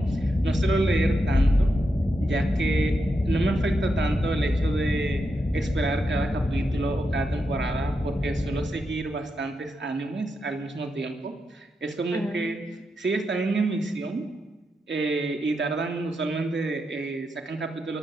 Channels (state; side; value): normal; both; correlation 0.85